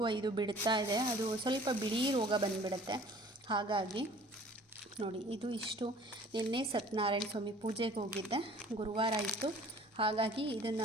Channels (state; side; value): normal; both; correlation 0.50